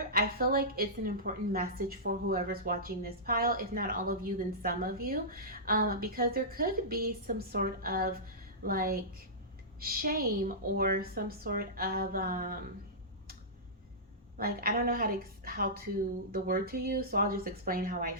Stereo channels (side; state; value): both; normal; correlation -0.16